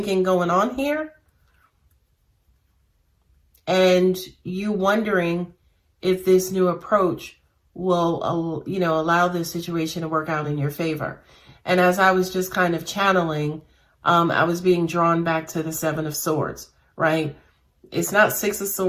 going on here. And you wondering if this new approach will, you know, allow this situation to work out in your favor. And as I was just kind of channeling, I was being drawn back to the Seven of Swords, right? It's not Six of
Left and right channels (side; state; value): both; identical; correlation 1.00